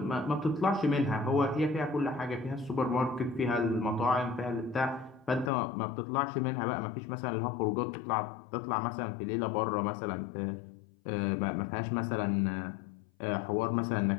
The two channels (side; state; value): right; drops out; at 5.5 s